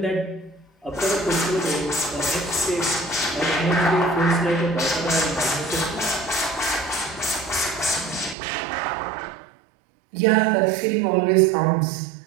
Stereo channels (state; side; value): drops out; left; at 8.3 s